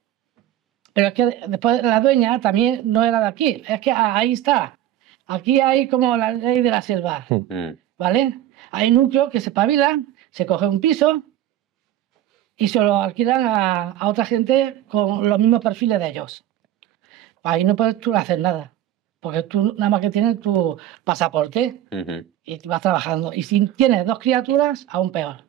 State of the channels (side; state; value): left; quieter; 12.6 dB